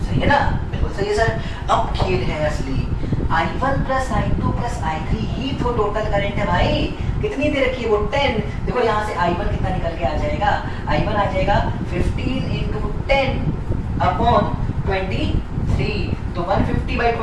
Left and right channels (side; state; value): both; identical; correlation 1.00